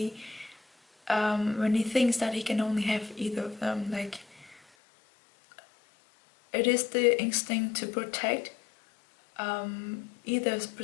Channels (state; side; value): drops out; right; at 4.6 s